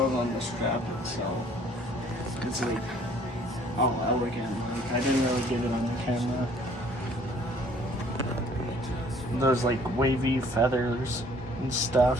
on the strap itself, it's like, oh, elegant. Like, I didn't really get it on the camera. Those like wavy feathers and stuff.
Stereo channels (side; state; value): both; normal; correlation 0.57